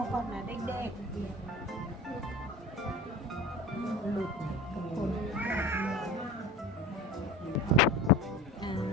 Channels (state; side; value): normal; both; correlation 0.36